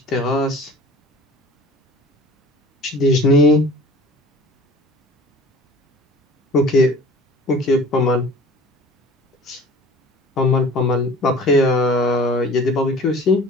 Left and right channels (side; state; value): both; normal; correlation 0.45